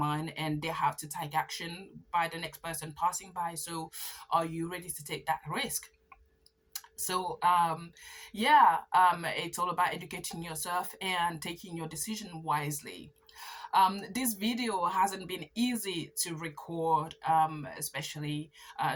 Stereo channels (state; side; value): identical; both; correlation 1.00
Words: and they have to take action by the next person passing by. So are you ready to take that risk? So it's all about educating yourself and taking your decision wisely. This video hasn't been easy to record, especially